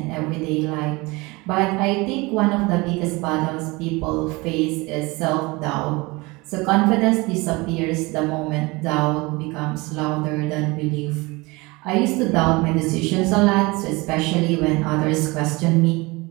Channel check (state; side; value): quieter; left; 24.1 dB